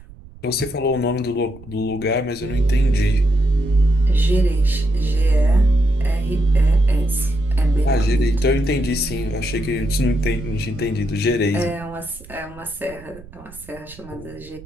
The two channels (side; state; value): right; noise; rumble, 20 dB below the sound